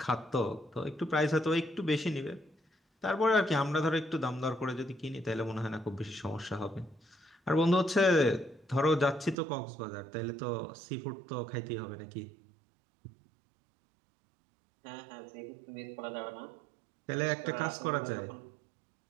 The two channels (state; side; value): drops out; left; at 9.3 s